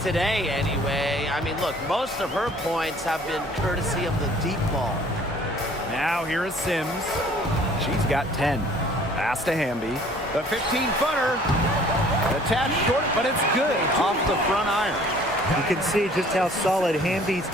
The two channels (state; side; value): normal; both; correlation 0.54